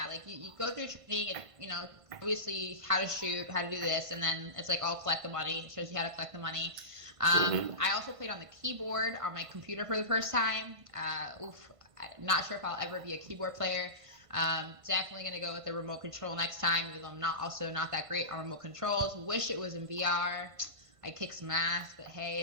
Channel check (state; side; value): late; left; 1.5 ms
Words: like you go through training and, obviously how to shoot, how to do this, and then it's like all collect the money. It shows you how to collect the money. I also played on the keyboard on my computer for the first time. I'm not sure if I'll ever be a keyboard player. Definitely going to go with the remote control next time, even though I'm not that great on remote controls. Wish it was in VR. I kick some ass, but hey,